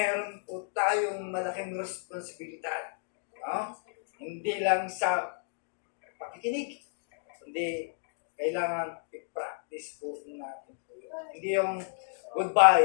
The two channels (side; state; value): right; silent; digital silence